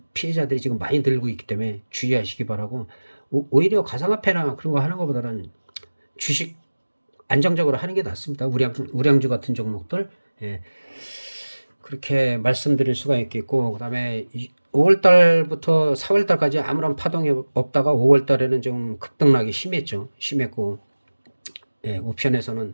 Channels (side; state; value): both; inverted; correlation -1.00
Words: 피해자들이 지금 많이 늘고 있기 때문에 주의하시기 바라고 오히려 가상화폐나 그런 거 하는 것보다는 주식 안정적으로 하는 게 낫습니다. 우량주 같은 종목들 그렇게 말씀드릴 수가 있겠고 그다음에 5월 달부터 4월 달까지 아무런 파동이 없다가 5월 달에는 좀 급등락이 심했죠. 심했고 예, 옵션에서는